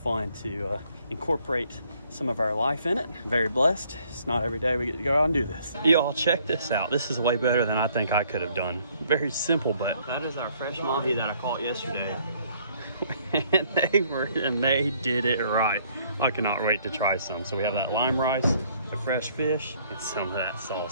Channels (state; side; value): inverted; both; correlation -0.64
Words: to incorporate some of our life in it. I'm very blessed. It's not every day we get to go out and do this. Y'all check this out. This is way better than I think I could have done. Very simple, but that is our fresh mahi that I caught yesterday. and they did it right. I cannot wait to try some. So we have that lime rice, the fresh fish, and some of that